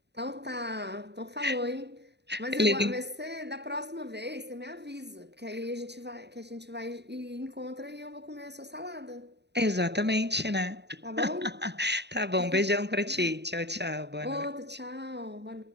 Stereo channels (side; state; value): left; late; 0.50 ms